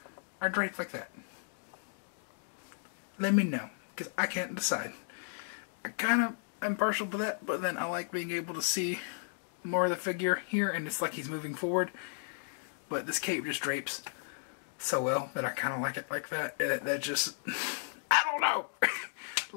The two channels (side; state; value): right; silent; digital silence